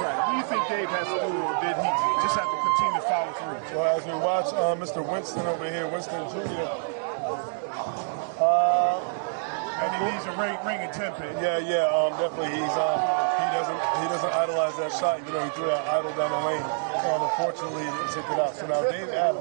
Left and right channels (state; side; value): silent; left; digital silence